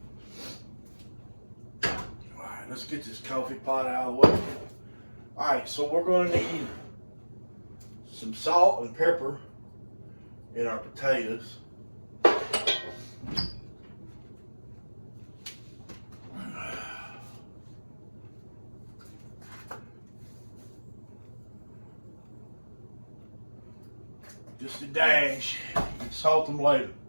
All right, let's get this coffee pot out of the way. All right, so we're gonna need some salt and pepper in our potatoes. Just a dash. Salt them later.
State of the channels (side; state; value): both; inverted; correlation -1.00